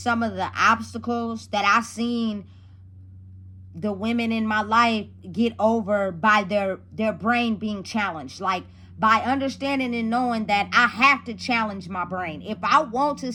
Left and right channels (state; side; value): identical; both; correlation 1.00